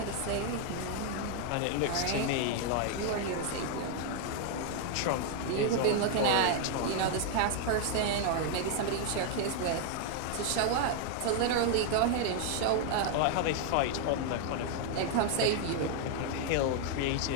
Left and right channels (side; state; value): both; different; correlation 0.00